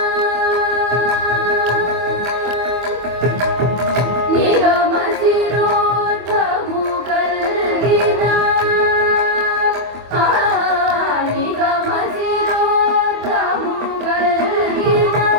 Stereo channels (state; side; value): late; left; 24 ms